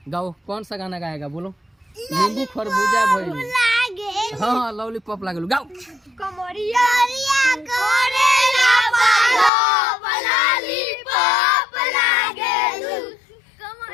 गाओ, कौन सा गाना गाएगा बोलो? नींबू खरबूजा भइल, हाँ लॉलीपॉप लागल, गाओ।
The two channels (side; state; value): right; drops out; at 9.5 s